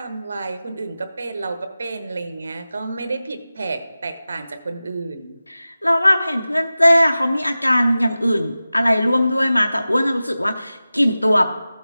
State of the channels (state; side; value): inverted; both; correlation -0.96